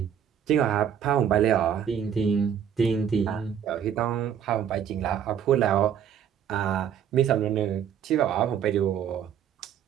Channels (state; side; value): quieter; left; 8.8 dB